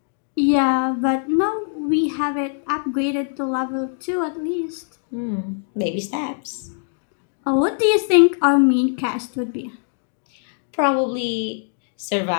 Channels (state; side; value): silent; right; digital silence